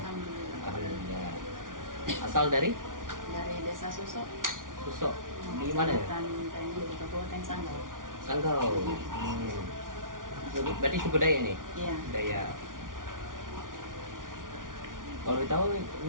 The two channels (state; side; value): late; left; 0.89 ms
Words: Alhamdulillah. Asal dari Desa Susok. Susok. Di mana ya? Kabupaten Sanggau. Sanggau. Berarti suku Dayak nih? Iya. Dayak. Kalau tahu